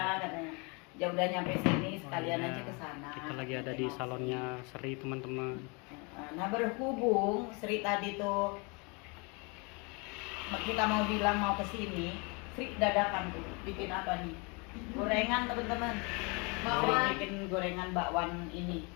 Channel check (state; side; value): quieter; right; 30.8 dB